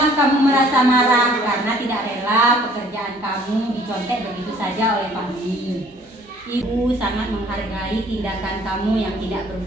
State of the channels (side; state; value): both; normal; correlation 0.57